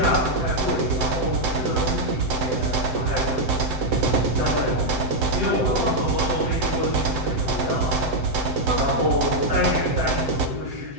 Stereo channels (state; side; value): late; left; 7.8 ms